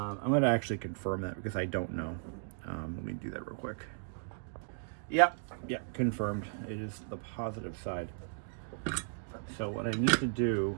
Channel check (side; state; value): left; silent; digital silence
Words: gonna actually confirm that because I don't know. Let me do that real quick. Yeah, confirmed. It is the positive side. So what I need to do